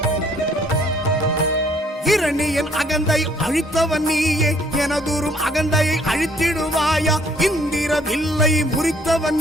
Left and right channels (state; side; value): normal; both; correlation 0.62